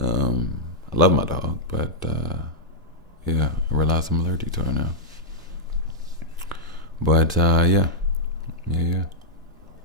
love my dog, but yeah, I realize I'm allergic to her now. But yeah.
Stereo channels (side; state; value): both; normal; correlation -0.07